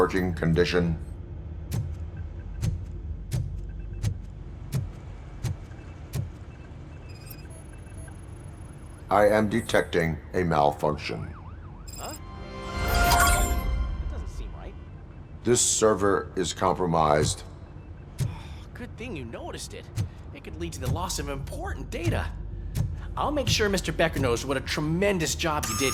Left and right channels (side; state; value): both; identical; correlation 1.00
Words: condition. I am detecting a malfunction. Huh? That doesn't seem right. This server is compromised. Good thing you noticed it. It could lead to the loss of important data. I'll make sure Mr. Becker knows what a tremendous job you did